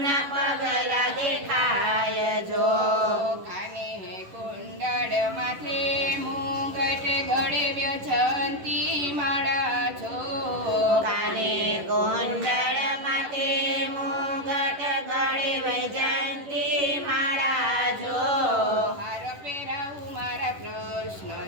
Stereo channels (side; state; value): left; late; 11 ms